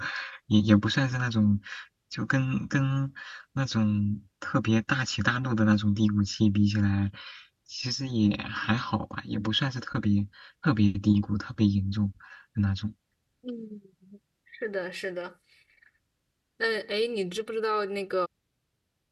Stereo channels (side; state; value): both; identical; correlation 1.00